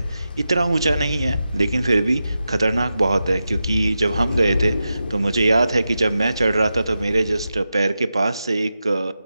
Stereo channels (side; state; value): both; inverted; correlation -0.90